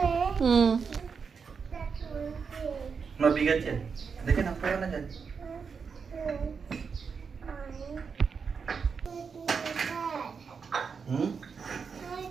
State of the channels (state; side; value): quieter; left; 5.8 dB